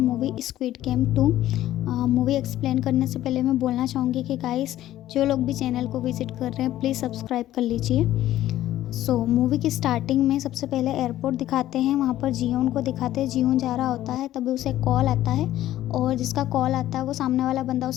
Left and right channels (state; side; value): quieter; right; 13.7 dB